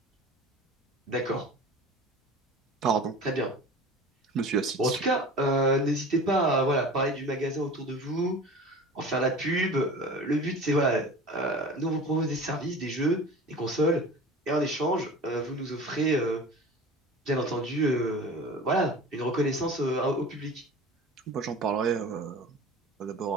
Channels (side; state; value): both; normal; correlation 0.37